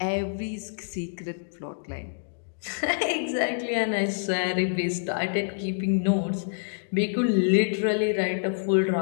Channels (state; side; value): silent; right; digital silence